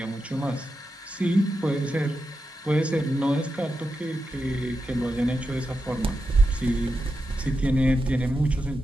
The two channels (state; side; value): normal; both; correlation 0.88